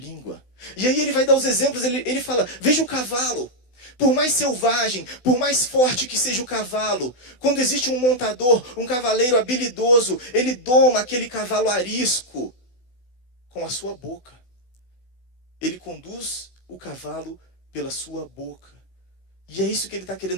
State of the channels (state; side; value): late; right; 16 ms